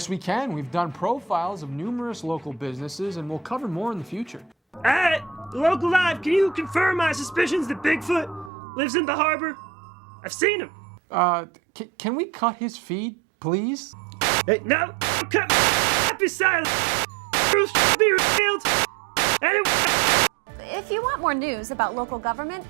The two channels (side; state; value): left; drops out; at 8.5 s